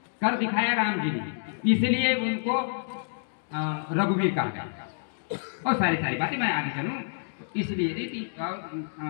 कर दिखाया राम जी ने, इसलिए उनको रघुवीर कहा गया। और सारी बातें मैं आगे चलूं इसलिए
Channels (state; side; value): silent; right; digital silence